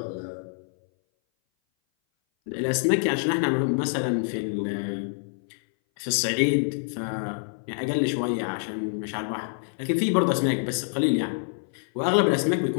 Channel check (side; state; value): right; silent; 59 dB below the other